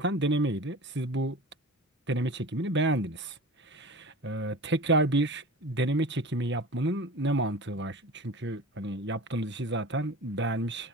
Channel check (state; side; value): normal; both; correlation 0.35